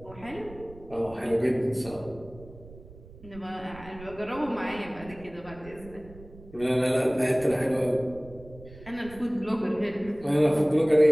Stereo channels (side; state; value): right; noise; rumble, 19 dB below the sound